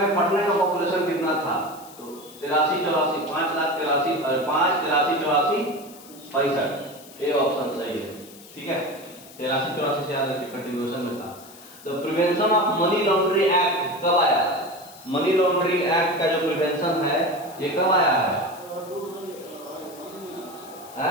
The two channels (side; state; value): left; noise; hiss, 20 dB below the sound